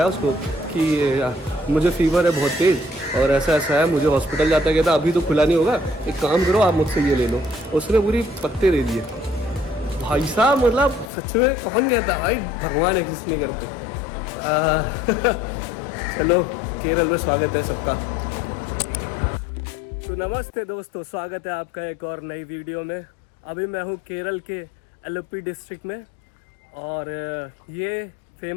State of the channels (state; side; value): drops out; right; at 11.1 s